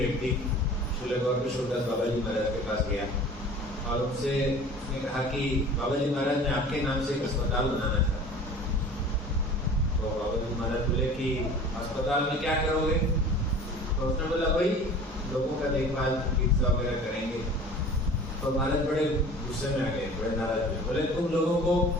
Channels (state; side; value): normal; both; correlation 0.43